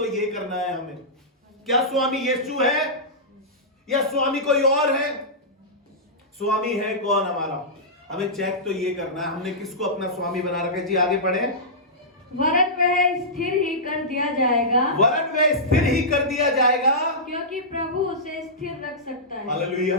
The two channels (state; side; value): normal; both; correlation -0.14